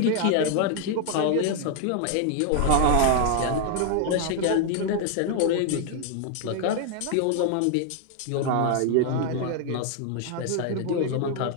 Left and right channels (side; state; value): both; different; correlation 0.00